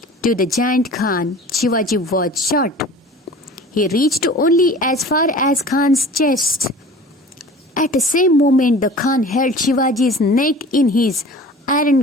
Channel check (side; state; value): both; normal; correlation 0.42